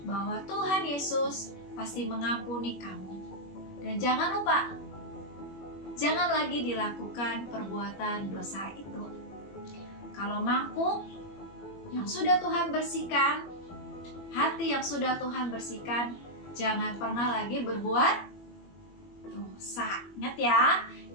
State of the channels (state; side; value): late; right; 21 ms